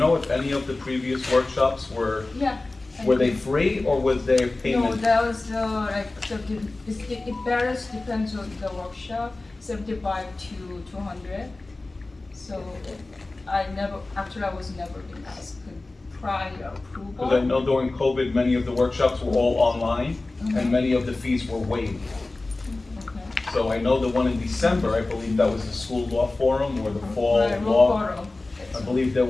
if any of the previous workshops were they free or was there No, payment? that was like it varies, depends on the workshop, 75 to 200. So I was never been asked prior approval. Because I know during COVID, many of the workshops were all online and many of the fees were waived. Okay. So I know the one in December, I believe that was the school law forum or the fall Right, law. forum. I believe it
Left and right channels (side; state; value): right; quieter; 3.1 dB